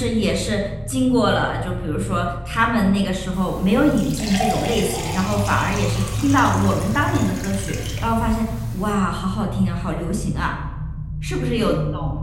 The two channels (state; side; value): identical; both; correlation 1.00